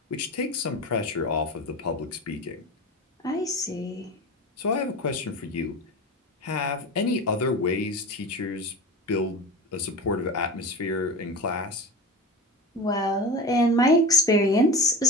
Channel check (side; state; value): both; normal; correlation 0.30